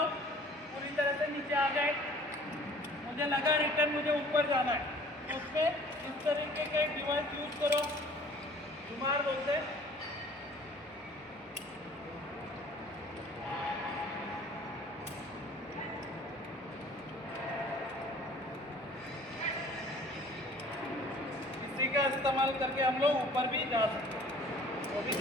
पूरी तरह से नीचे आ गए। मुझे लगा रिटर्न मुझे ऊपर जाना है, तो उसमें इस तरीके के डिवाइस यूज करो, जुमार बोलते हैं। इसी का इस्तेमाल करके हम लोग ऊपर भी जा सकते हैं, वो भी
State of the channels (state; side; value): normal; both; correlation 0.51